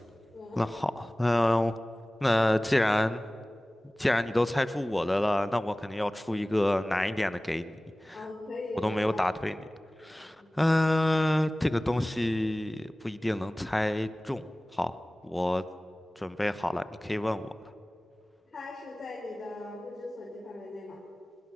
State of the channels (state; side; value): normal; both; correlation 0.98